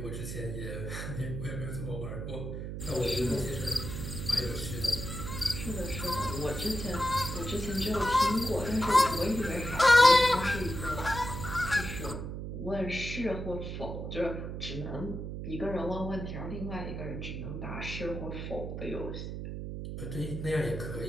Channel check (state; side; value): noise; right; hum, 6 dB below the sound